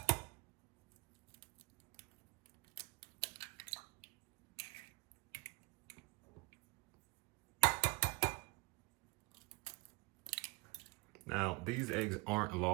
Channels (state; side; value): quieter; left; 25.9 dB